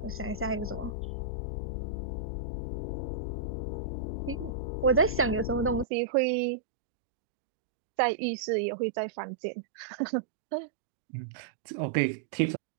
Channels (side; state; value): left; drops out; at 5.9 s